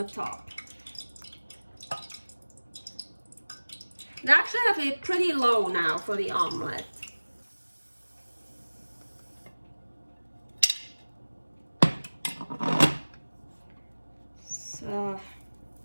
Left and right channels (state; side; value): inverted; both; correlation -1.00